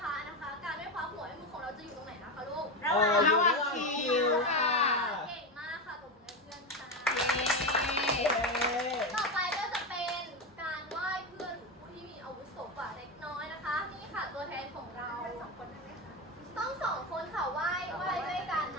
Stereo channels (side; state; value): both; normal; correlation 0.15